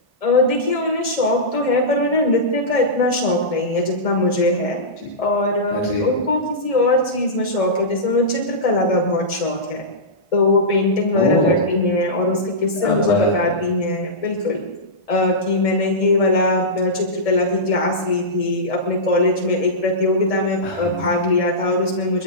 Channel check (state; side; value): late; right; 1.7 ms